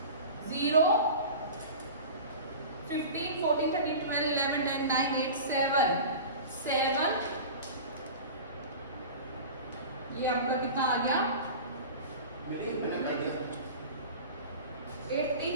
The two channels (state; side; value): inverted; both; correlation -0.34